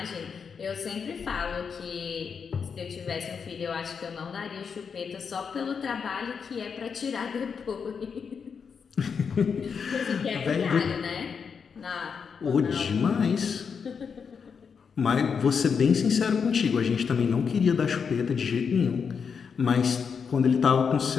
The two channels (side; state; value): right; quieter; 6.2 dB